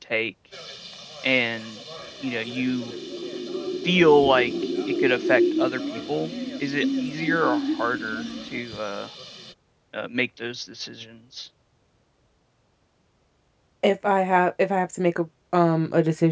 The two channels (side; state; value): both; identical; correlation 1.00